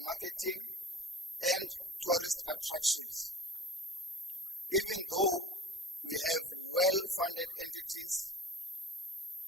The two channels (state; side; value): normal; both; correlation 0.39